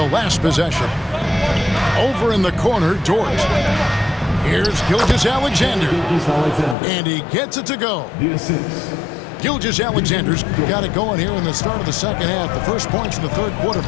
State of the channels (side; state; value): right; drops out; at 6.8 s